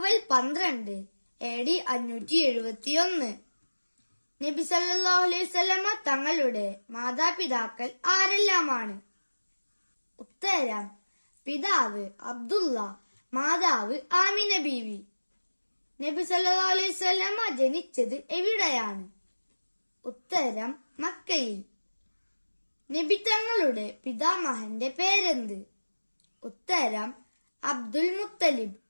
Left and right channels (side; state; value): both; inverted; correlation -1.00